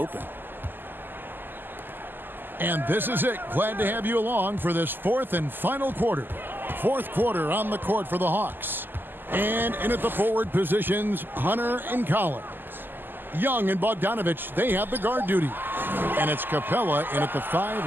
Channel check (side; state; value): left; late; 0.092 ms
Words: And this is it. Glad to have you along for this fourth and final quarter. Fourth quarter on the court for the Hawks. And in at the forward positions, Hunter and Collins. Young and Bogdanovich, they have the guard duty. And it's Capella in at the